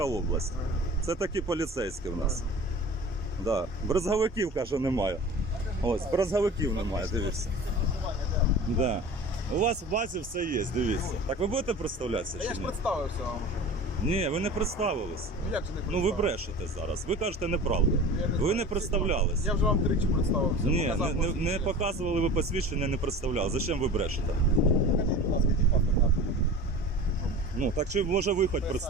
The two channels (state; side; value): normal; both; correlation 0.37